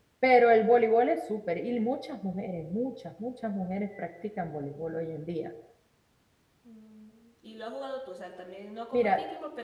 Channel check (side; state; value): both; identical; correlation 1.00